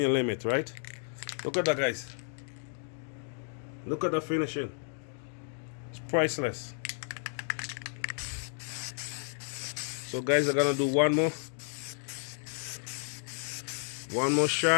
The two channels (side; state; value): right; silent; 55 dB below the other